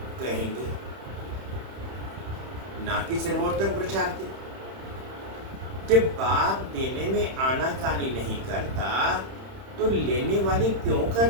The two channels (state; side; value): late; left; 31 ms